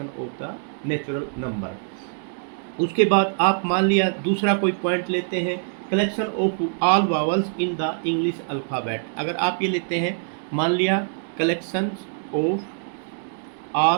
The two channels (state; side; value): silent; left; digital silence